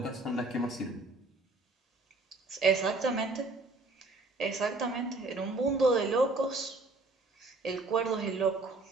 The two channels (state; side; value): quieter; left; 3.1 dB